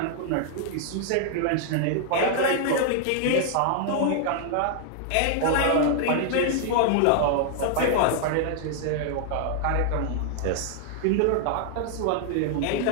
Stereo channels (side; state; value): both; different; correlation 0.00